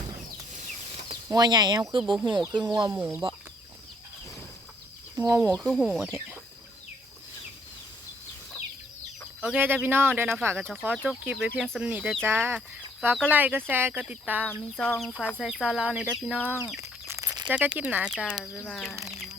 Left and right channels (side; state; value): both; normal; correlation 0.66